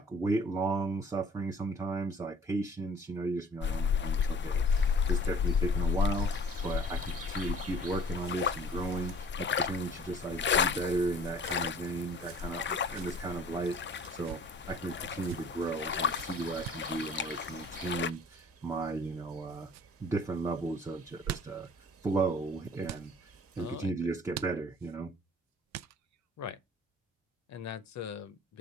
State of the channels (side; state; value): both; normal; correlation 0.50